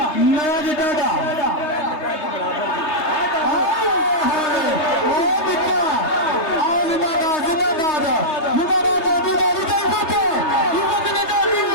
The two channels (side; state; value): right; late; 3.3 ms